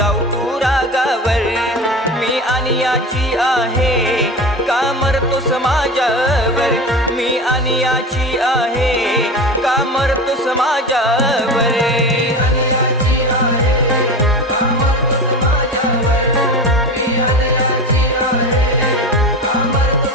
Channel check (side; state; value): both; normal; correlation 0.29